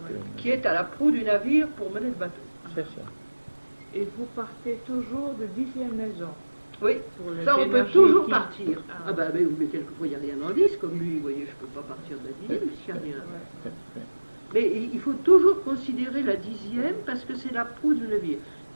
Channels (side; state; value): both; inverted; correlation -1.00